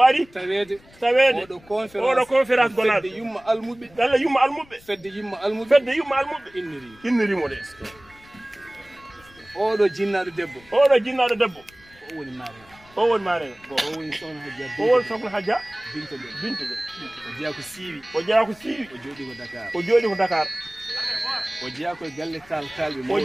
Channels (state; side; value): noise; left; rumble, 26 dB below the sound